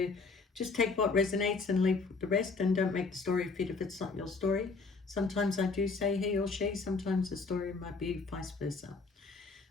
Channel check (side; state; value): right; quieter; 4.2 dB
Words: just take what resonates and leave the rest, and don't make the story fit if it's not your story. Sometimes I do say he or she, sometimes the story might be vice versa.